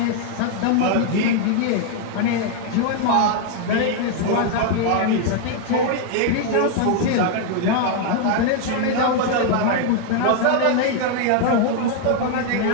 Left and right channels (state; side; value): different; both; correlation 0.00